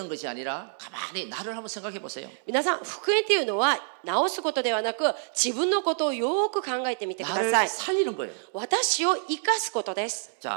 것이 아니라 가만히 나를 한번 생각해 보세요. 皆さん福音というのは直すことではなく自分のことをよく考えてみてくだ 나를 さい。 살리는 거예요. 私を生かすことです。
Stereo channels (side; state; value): left; silent; digital silence